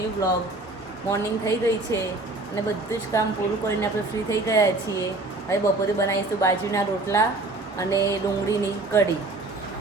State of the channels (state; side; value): quieter; left; 3.0 dB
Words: blog. Morning થઈ ગઈ છે અને બધું જ કામ પૂરું કરીને આપણે ફ્રી થઈ ગયા છીએ. હવે બપોરે બનાવીશું બાજરીના રોટલા અને ડુંગળીની કઢી.